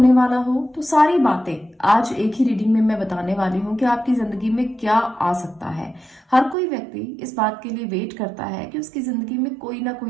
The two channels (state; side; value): drops out; left; at 6.6 s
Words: वाला हो। तो सारी बातें आज एक ही रीडिंग में मैं बताने वाली हूँ कि आपकी जिंदगी में क्या आ सकता है। हर कोई व्यक्ति इस बात के लिए वेट करता है कि उसकी जिंदगी में कोई ना